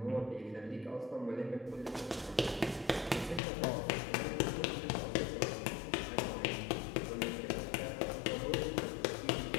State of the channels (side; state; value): right; drops out; at 3.4 s